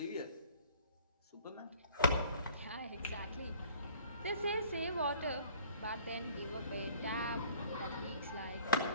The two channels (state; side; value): inverted; both; correlation -0.51